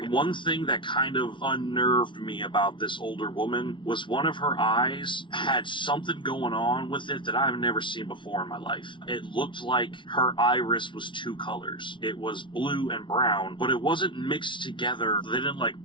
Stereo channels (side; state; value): right; late; 0.24 ms